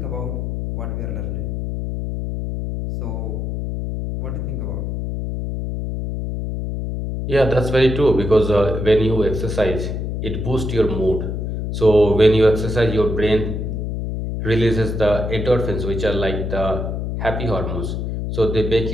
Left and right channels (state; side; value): noise; left; hum, 3 dB below the sound